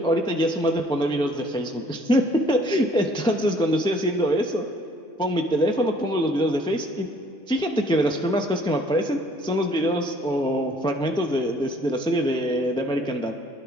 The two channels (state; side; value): normal; both; correlation 0.59